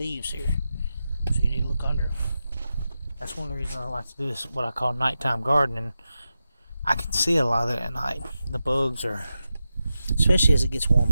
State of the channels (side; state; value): both; inverted; correlation -0.90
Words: here, so you need to look under them. That's one of the reasons I like to do this, what I call nighttime gardening. I can see a lot of that at night. The bugs are, especially as it gets